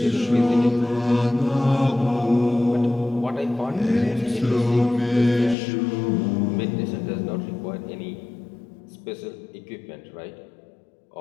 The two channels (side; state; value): right; drops out; at 5.6 s